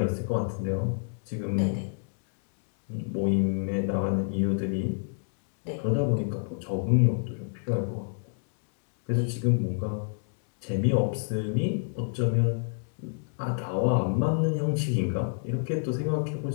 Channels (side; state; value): right; silent; digital silence